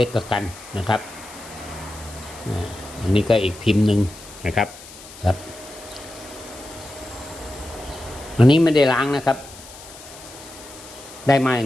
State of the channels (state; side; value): noise; left; hiss, 17 dB below the sound